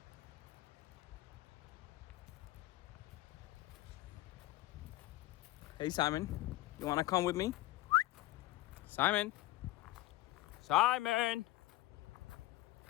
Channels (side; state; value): right; quieter; 17.0 dB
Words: Hey Simon, you wanna come with me? Simon! Simon!